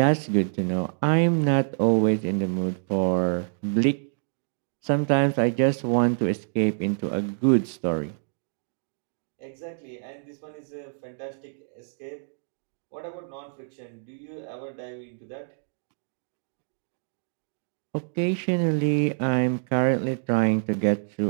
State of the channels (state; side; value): silent; left; digital silence